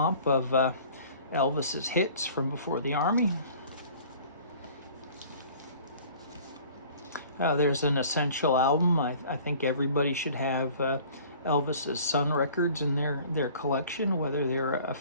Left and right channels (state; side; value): inverted; both; correlation -0.49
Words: of Elvis's hits from before the Army. There's an essential album. I think everybody should have Elvis's Sun records in their collection, whether they're a